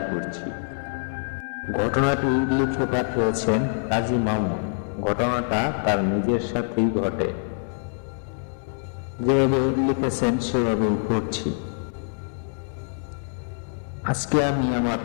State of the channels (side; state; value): right; silent; digital silence